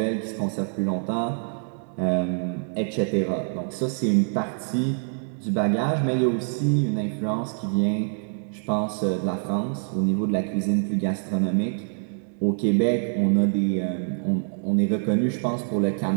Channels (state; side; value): silent; left; 60 dB below the other